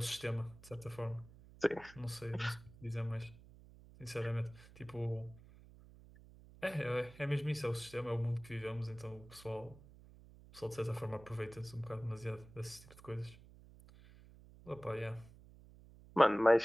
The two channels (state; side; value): noise; right; hum, 20 dB below the sound